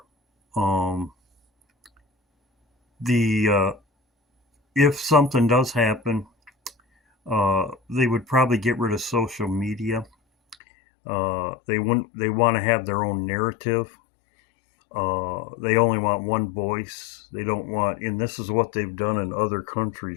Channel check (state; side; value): drops out; right; at 10.6 s